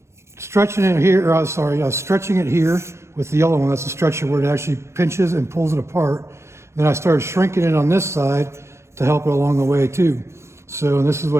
stretching it here, I was stretching it here with the yellow one. That's the stretcher where it actually pinches and pulls it apart. Then I started shrinking it on this side to help it along the way too. So this is what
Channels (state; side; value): late; left; 0.13 ms